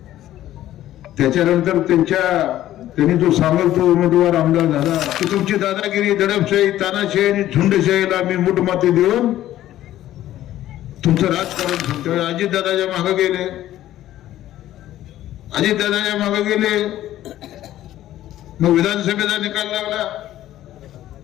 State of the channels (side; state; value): right; quieter; 13.4 dB